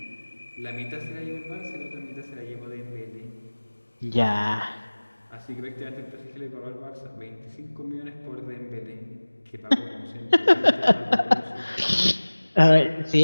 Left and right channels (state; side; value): inverted; both; correlation -1.00